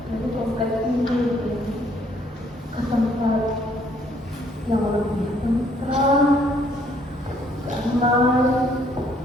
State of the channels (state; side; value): normal; both; correlation 0.65